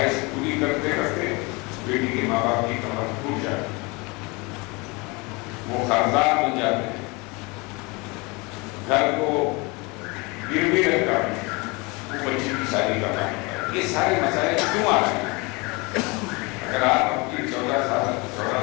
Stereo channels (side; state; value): right; quieter; 26.9 dB